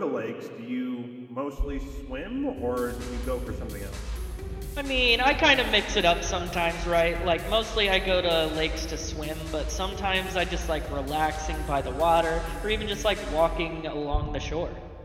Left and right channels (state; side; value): identical; both; correlation 1.00